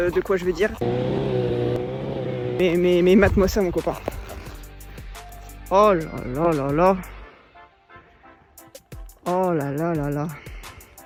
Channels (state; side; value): identical; both; correlation 1.00